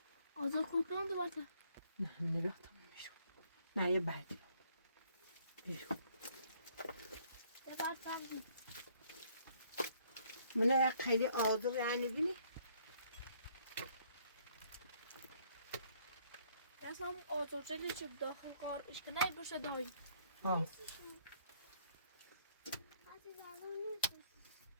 آزاد کلکان دو باته. نه بیا تمام میشون. نه یه بعدی. بیرون. یه بار سبزی. منه خیلی آزار یعنی بینی؟ Jasno otočili ću da kar iška najbrže dođe. ها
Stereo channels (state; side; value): inverted; both; correlation -0.65